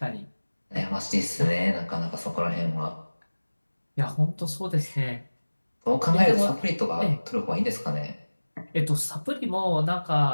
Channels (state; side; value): inverted; both; correlation -1.00